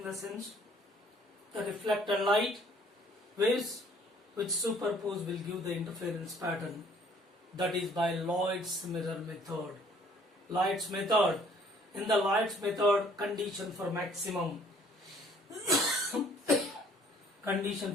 the sense the reflected light waves which superpose will give the interference pattern, that is by Lloyd's mirror method. Lloyd's method. In the Lloyd's method, condition for maximum. Condition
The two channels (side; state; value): both; normal; correlation 0.59